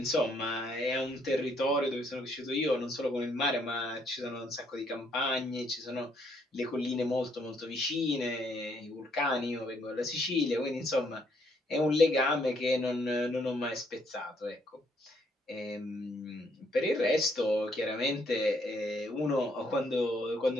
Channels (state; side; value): normal; both; correlation 0.70